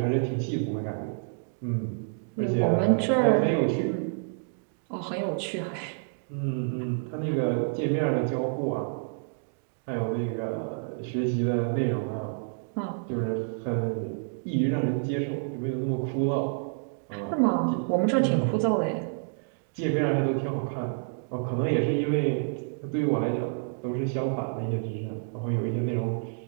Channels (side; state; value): left; silent; digital silence